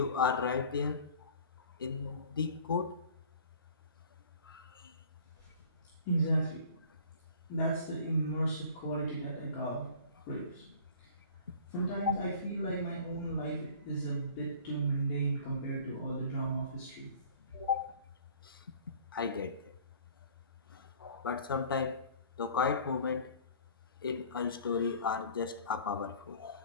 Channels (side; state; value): both; inverted; correlation -0.47